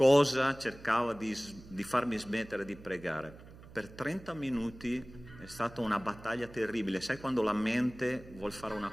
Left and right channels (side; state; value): right; noise; hum, 19 dB below the sound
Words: cercava di farmi smettere di pregare. Per 30 minuti è stata una battaglia terribile. Sai quando la mente vuol fare una